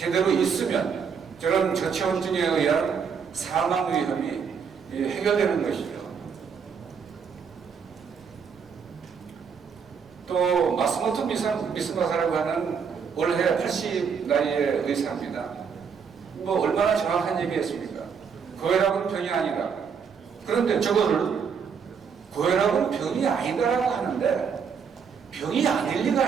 있으면 저런 저체온증에 의한 사망 위험이 해결되는 것이죠. 또 마스모토 미스마사라고 하는 올해 80 나이의 의사입니다. 뭐 얼마나 정확한 얘기했습니까? 고혈압은 병이 아니다. 그런데 저거를 고혈압은 병이 아니다라고 하는데 병이 아닐 리가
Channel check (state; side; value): quieter; left; 6.5 dB